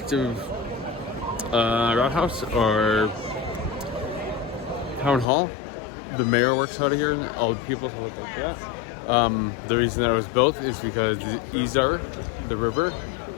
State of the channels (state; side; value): drops out; right; at 5.2 s